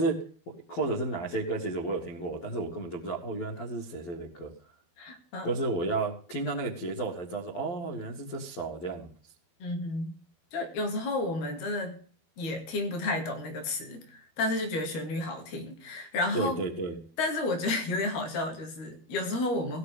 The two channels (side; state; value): right; late; 12 ms